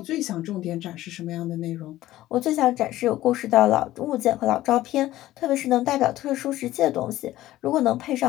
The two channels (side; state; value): right; quieter; 15.2 dB